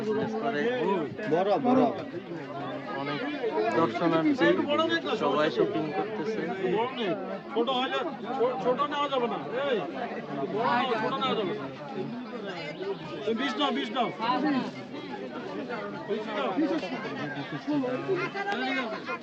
করে অনেক দর্শনার্থী, সবাই শপিং করতেছে। ছোট নেওয়া যাবে না, ছোট নেওয়া যাবে না। 20 নাও, 20 নাও।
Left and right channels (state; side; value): identical; both; correlation 1.00